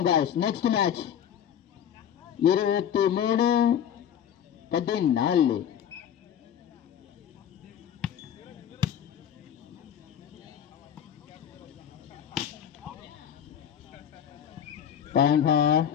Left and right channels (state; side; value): quieter; right; 9.3 dB